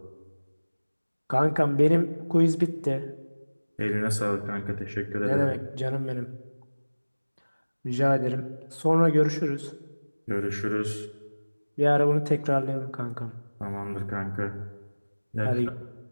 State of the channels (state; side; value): inverted; both; correlation -1.00